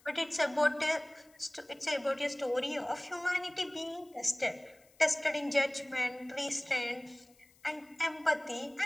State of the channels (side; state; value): left; noise; hiss, 30 dB below the sound